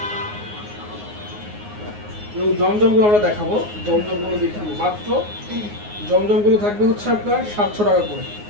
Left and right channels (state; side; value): late; left; 9.6 ms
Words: জমজমগুলো আমরা দেখাবো, জমজমগুলো দেখাবো। মাত্র জমজমগুলো থাকবে হচ্ছে আপনার 700 টাকা করে,